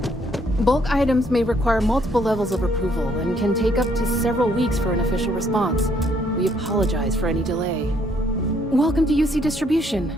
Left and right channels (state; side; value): normal; both; correlation 0.68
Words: Bulk items may require multiple levels of approval and can take up to several weeks for an official response. We apologize for any delay. Welcome to UC Distribution.